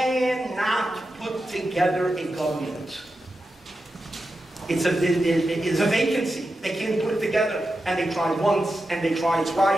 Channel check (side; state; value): both; normal; correlation 0.90